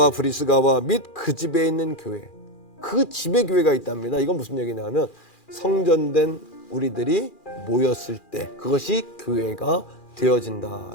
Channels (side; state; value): right; late; 2.4 ms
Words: 브리스가와 및 그 집에 있는 교회, 그 집에 교회가 있답니다. 이건 무슨 얘기냐면 성전된 우리들이 모였을 때 그것이 교회가